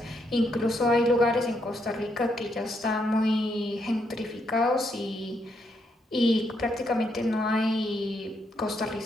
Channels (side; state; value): both; normal; correlation 0.77